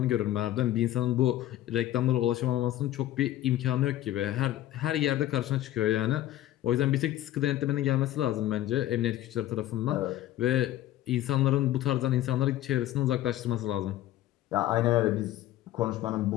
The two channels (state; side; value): quieter; right; 13.9 dB